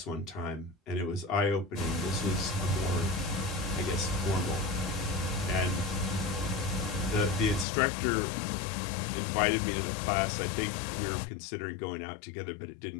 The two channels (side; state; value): right; drops out; at 7.7 s